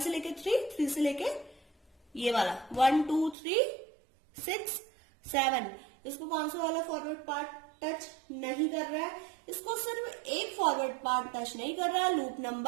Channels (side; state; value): left; drops out; at 3.4 s